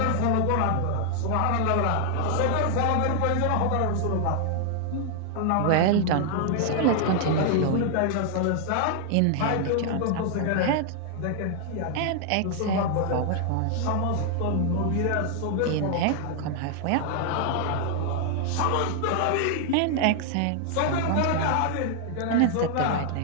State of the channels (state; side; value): different; both; correlation 0.00